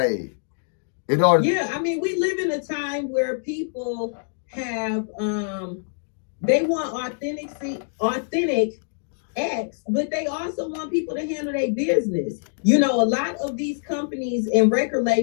In order I mean, we live in a time where people have, they want authentic X, but they also want people to handle their business. You know, a lot of these companies and record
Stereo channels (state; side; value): silent; right; digital silence